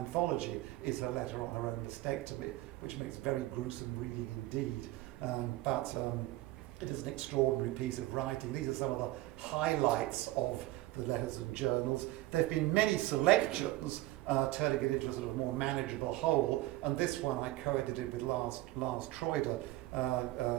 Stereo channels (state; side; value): quieter; left; 17.7 dB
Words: is her letter on her own mastectomy, which makes very gruesome reading indeed. But it is an extraordinary piece of writing. These are some of the highlights of the letters and journals. There have been many selections, turning it into a sort of more manageable whole, and this one I co-edited with Lars Troider